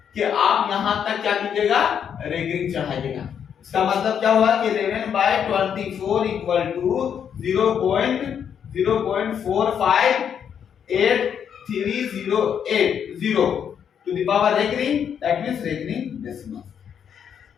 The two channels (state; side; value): quieter; right; 8.1 dB